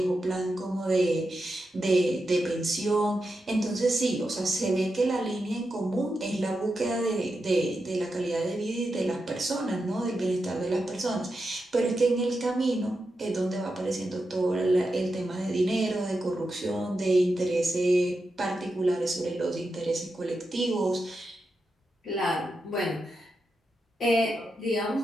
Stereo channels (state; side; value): normal; both; correlation 0.88